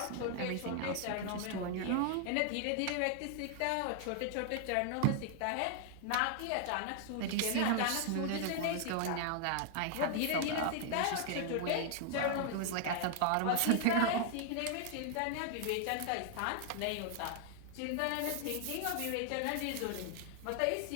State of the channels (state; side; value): different; both; correlation 0.00